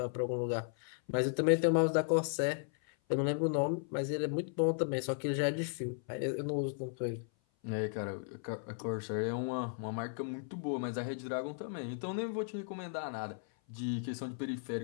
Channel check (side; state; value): right; silent; 54 dB below the other